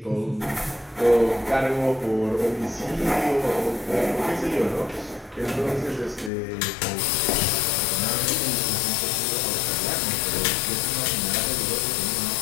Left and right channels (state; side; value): drops out; right; at 6.3 s